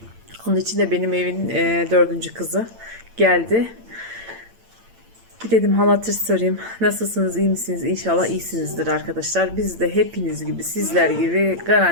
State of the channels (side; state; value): left; late; 8.8 ms